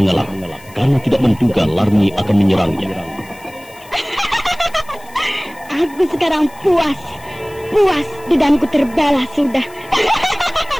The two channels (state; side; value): noise; left; hiss, 24 dB below the sound